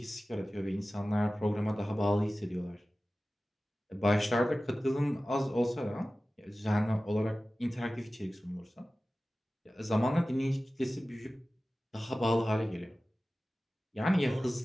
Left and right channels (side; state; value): both; normal; correlation 0.96